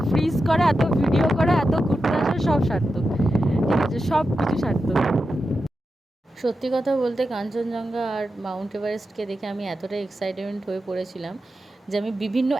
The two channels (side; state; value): both; normal; correlation 0.90